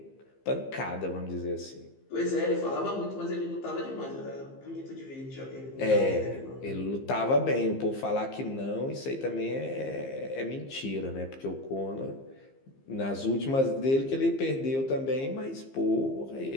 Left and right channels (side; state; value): right; late; 15 ms